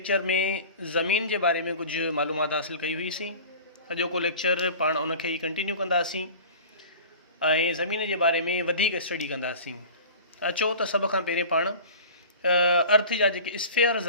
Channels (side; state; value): both; inverted; correlation -0.38